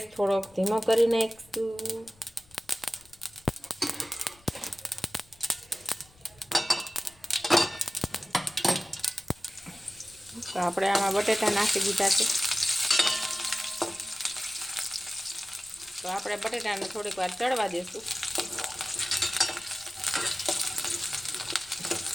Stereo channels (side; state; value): left; noise; rumble, 28 dB below the sound